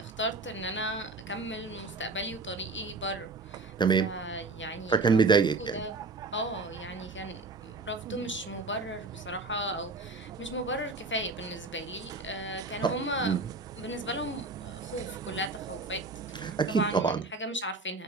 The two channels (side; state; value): left; quieter; 3.5 dB